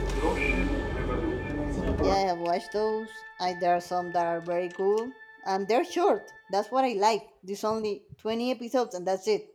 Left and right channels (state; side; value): identical; both; correlation 1.00